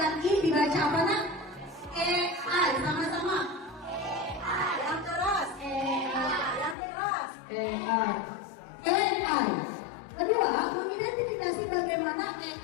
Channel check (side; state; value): right; drops out; at 6.8 s